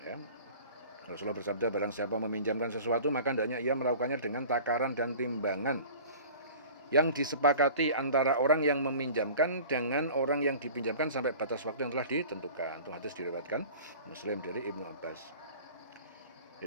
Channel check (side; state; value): both; inverted; correlation -0.42